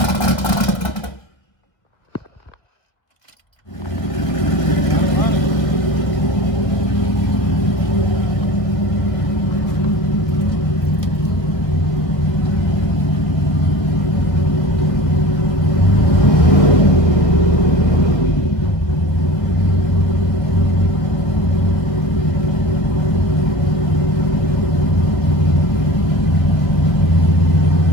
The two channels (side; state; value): right; late; 1.7 ms